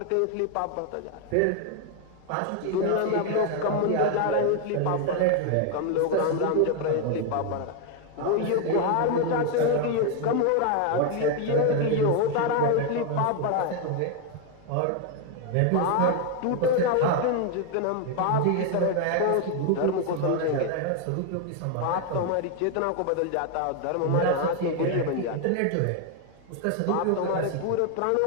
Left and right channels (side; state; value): both; different; correlation 0.01